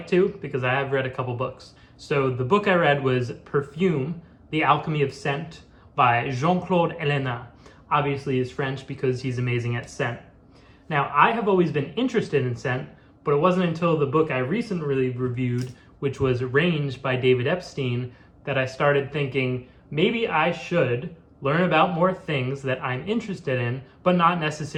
to because I have read a couple books. So the book I read was Perfume, The Alchemy of Scent by Claude Ellena. Obviously he's French because he's amazing at scent. Now, I have always been interested in scent, but it wasn't until the book I recently reviewed, which was Range by David Epstein, that I started thinking maybe I should learn about more things that I'm interested in, but not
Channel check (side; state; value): both; identical; correlation 1.00